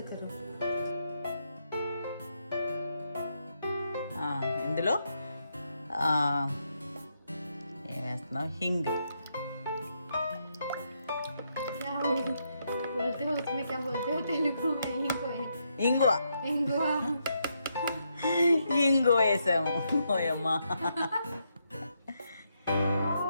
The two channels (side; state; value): both; inverted; correlation -0.79